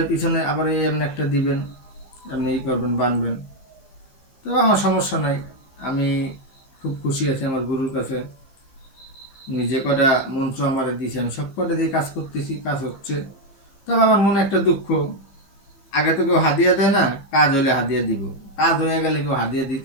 পিছনে আবার এই এমনি একটা দিবেন, আপনি এই করবেন, বাঁধবেন। তো আমার সমস্যা নাই, আমি খুব খুশি আছি আমার গুরুর কাছে। উনি যে কটা মন্ত্র আমার দিয়েছে, আমি সব কটা দিয়ে কাজ করতেছি, কাজ হচ্ছে। তবে আমার মনে একটা দুঃখ, আগে তো কেউ হাদিয়া দেয় না, কাজ হলে হাদিয়া দিব, কাজ হয়ে গেলে কেউ হাদিয়া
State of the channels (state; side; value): late; right; 15 ms